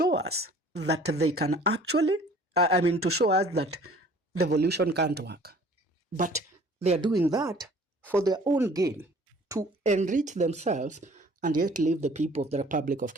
us that they can actually, to show us that devolution can't work. But they are doing that for their own gain, to enrich themselves and yet leave the people of the Republic of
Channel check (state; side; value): normal; both; correlation 0.51